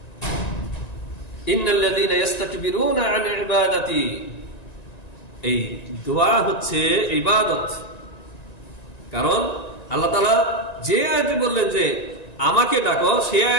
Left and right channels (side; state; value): right; late; 1.9 ms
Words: ইন্নাল্লাযীনা ইস্তাকবিরুনা আন ইবাদাতি, এই দোয়া হচ্ছে ইবাদত। কারণ আল্লাহ তাআলা যে আয়াতে বললেন যে আমাকে ডাকো, সে